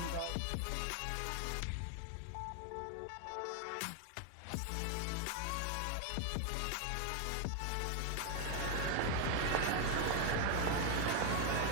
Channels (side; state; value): both; different; correlation 0.01